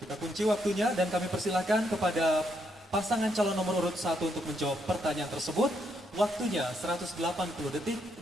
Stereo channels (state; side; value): normal; both; correlation 0.76